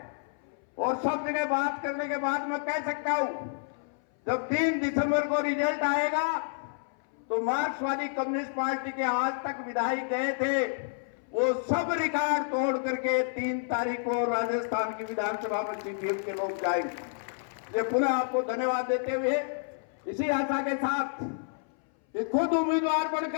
और सब जगह बात करने के बाद मैं कह सकता हूं, जब 3 दिसंबर को रिजल्ट आएगा तो मार्क्सवादी कम्युनिस्ट पार्टी के आज तक विधायक गए थे, वो सब रिकॉर्ड तोड़ करके 3 तारीख को राजस्थान की विधानसभा में सीपीएम के लोग जाएंगे। ये पुनः आपको धन्यवाद देते हुए, इसी आशा के साथ कि खुद उम्मीदवार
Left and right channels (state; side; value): silent; right; 58 dB below the other